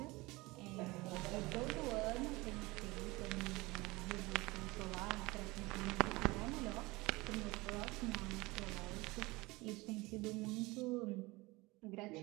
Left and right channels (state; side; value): quieter; left; 22.4 dB